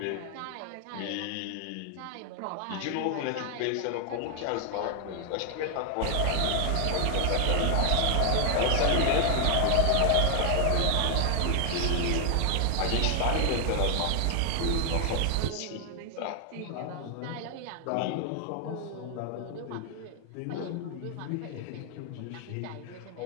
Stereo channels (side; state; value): both; different; correlation 0.00